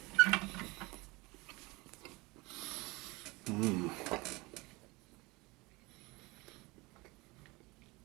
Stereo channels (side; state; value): left; quieter; 23.9 dB